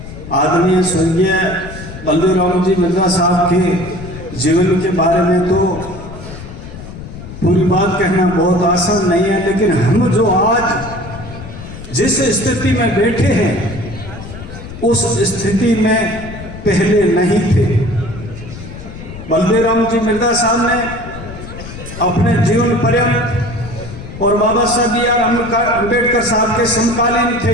आदरणीय स्वर्गीय बलदेवराम जी मिर्जा साहब के जीवन के बारे में तो पूरी बात कहना बहुत आसान नहीं है, लेकिन हम जो आज जिस स्थिति में बैठे हैं उस स्थिति में पहले नहीं थे। बलदेवराम जी मिर्जा साहब ने अपने जीवन पर्यंत और बाबा साहब बी आर अम्बेडकर साहब के समकालीन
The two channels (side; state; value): left; noise; rumble, 12 dB below the sound